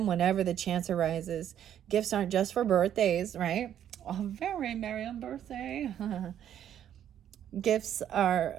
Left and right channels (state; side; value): quieter; left; 10.2 dB